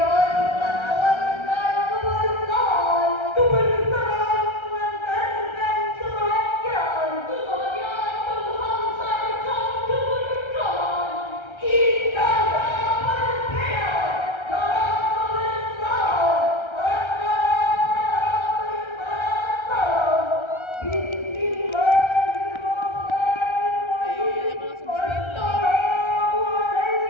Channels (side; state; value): right; late; 1.3 ms